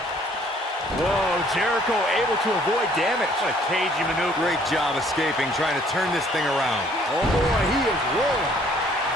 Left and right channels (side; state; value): both; normal; correlation 0.60